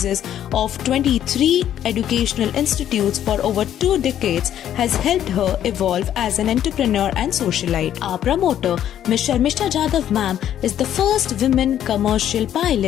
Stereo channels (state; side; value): quieter; right; 10.8 dB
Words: of 23 educational institutes for over 2 decades, has helped her evolve as an entrepreneur and socialite. Our promoter, Ms. Sharmishta Jadhav Ma'am, is the first women commercial